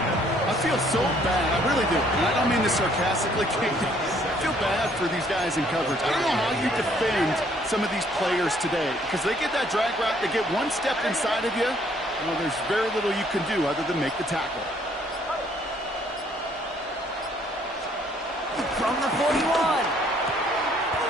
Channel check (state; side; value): normal; both; correlation 0.64